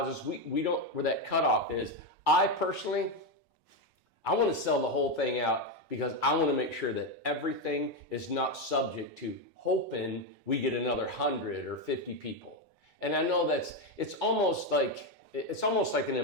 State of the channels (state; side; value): normal; both; correlation 0.08